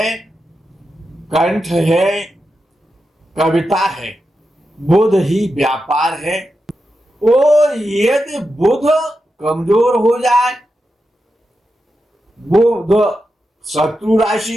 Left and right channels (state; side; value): normal; both; correlation 0.89